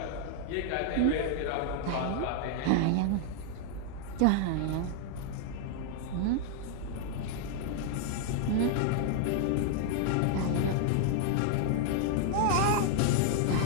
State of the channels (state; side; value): different; both; correlation 0.00